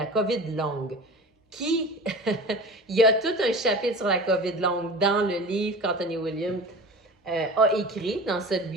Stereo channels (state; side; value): normal; both; correlation 0.36